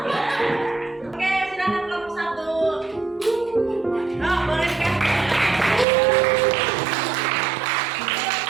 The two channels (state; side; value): drops out; left; at 5.9 s